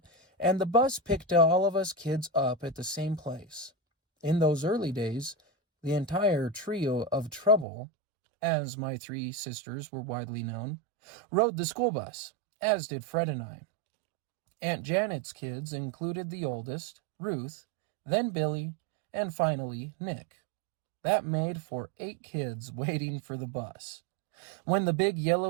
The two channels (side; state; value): left; drops out; at 7.7 s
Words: and the bus picked all of us kids up at the same place. In those early days, the entire trio of Trouble, as my three sisters were widely known, rode the school bus, as did Fred and I. Aunt Janet's kids included the oldest, Ruth, then Billy, and finally Nick. That made for 8 kids waiting for the bus. When the big